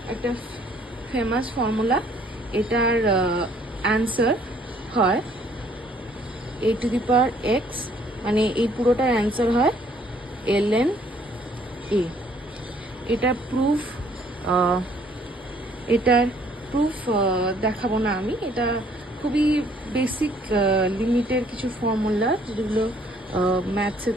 একটা ফেমাস ফর্মুলা। এটার অ্যান্সার হয় a to the power x, মানে এই পুরোটার অ্যান্সার হয় ln a। এটার প্রুফ দেখাবো না আমি, এটা খুবই বেসিক লিমিটের কিছু ফর্মুলা যেগুলো ম্যাথসে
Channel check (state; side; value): normal; both; correlation 0.62